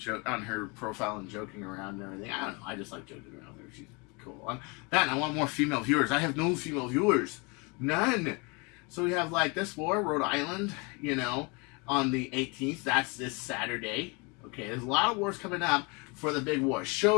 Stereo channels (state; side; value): quieter; right; 29.8 dB